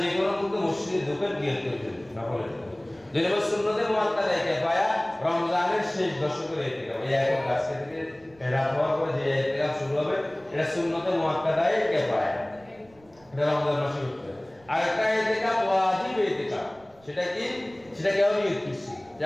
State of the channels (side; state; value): right; noise; rumble, 29 dB below the sound